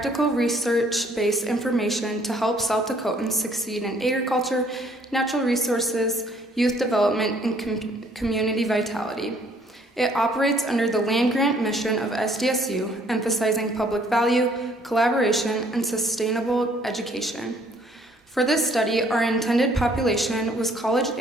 research-based information to help South Dakotans succeed in agriculture, natural resources, youth development, and community vitality. It operates under the land-grant mission of SDSU, emphasizing public value, collaboration, and sustainable education. For this study, our intended population was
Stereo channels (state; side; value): normal; both; correlation 0.62